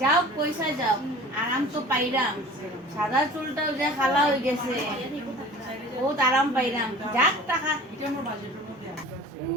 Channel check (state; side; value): normal; both; correlation 0.43